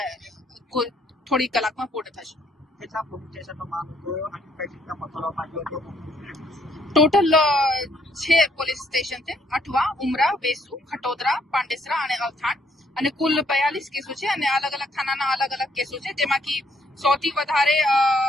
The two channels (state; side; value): normal; both; correlation 0.69